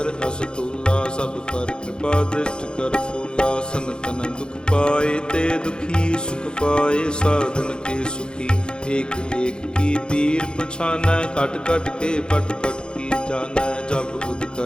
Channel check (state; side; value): late; right; 0.049 ms